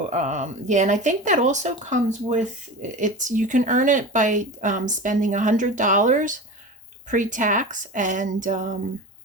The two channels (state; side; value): normal; both; correlation 0.30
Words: yeah, and I think that also comes with you can earn it by spending $100 pre-tax, and